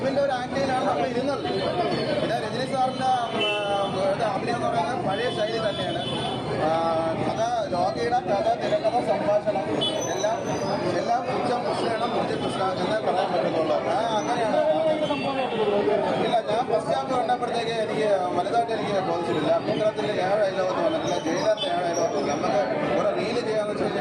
ഒരു ആക്ടിങ്ങിലാണ് നമ്മൾ ഇരുന്നത്. പിന്നെ രജനി സാറിൻ്റെ അഭിനയം എന്ന് പറയുന്നത് പഴയ ശൈലി തന്നെയാണ്. കഥ ലോകിയുടെ കഥ തിരക്കഥ സംഭാഷണം എല്ലാം ഉച്ചം കൃഷ്ണയാണ് മുഞ്ചി കൃഷ്ണ എന്നേ പറയാൻ പറ്റുന്നുള്ളൂ. അങ്ങനെയാണ്. ഇല്ല, ഞാൻ ഫസ്റ്റ് ഹാഫ് കണ്ടപ്പോഴത്തേക്ക് എനിക്ക് വലുതായിട്ട് എനിക്ക് ബോധിച്ചിട്ടില്ല. അഭിപ്രായത്തിൽ 7 ഡയലോഗൊന്നും വന്നിട്ടില്ല. ജയിലറിൻ്റെ 7 ഡയലോഗൊന്നും നമുക്ക് ഒരു റീല് ചെയ്യാന്ന് വെച്ച്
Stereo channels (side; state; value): both; identical; correlation 1.00